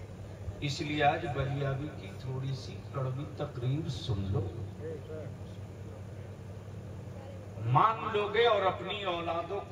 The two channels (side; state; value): both; identical; correlation 1.00